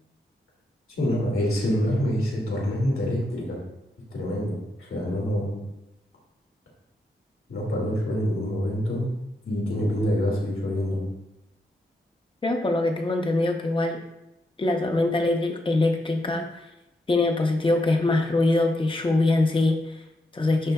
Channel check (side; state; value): both; normal; correlation 0.82